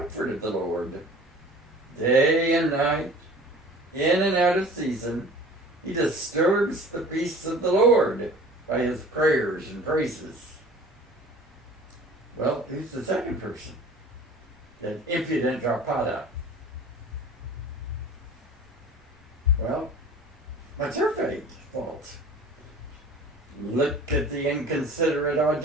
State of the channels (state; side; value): normal; both; correlation 0.44